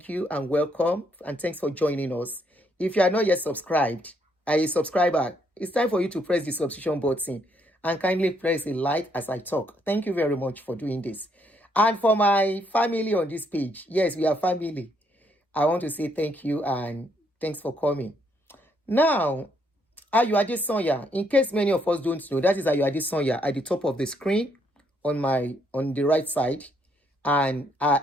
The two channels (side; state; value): both; normal; correlation 0.72